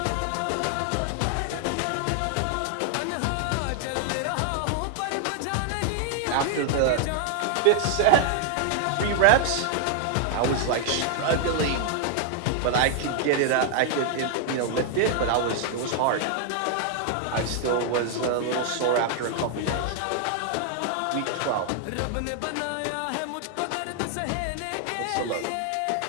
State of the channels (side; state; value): both; different; correlation 0.00